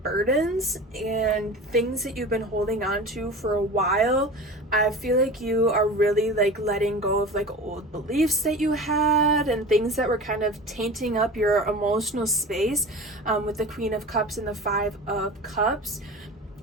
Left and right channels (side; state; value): both; normal; correlation 0.34